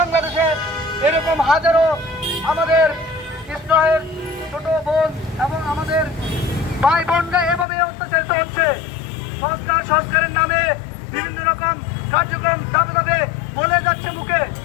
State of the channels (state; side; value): drops out; right; at 7.7 s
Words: এরকম হাজারো আমাদের ইসরায়েল ছোট বোন এবং আমাদের ভাই বোনরা এভাবে অত্যাচারিত হচ্ছে। সংস্কারের নামে বিভিন্ন রকম কার্যক্রম ধাপে ধাপে বলে যাচ্ছে মুখে।